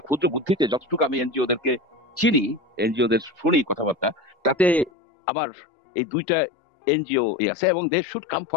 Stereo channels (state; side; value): drops out; right; at 4.9 s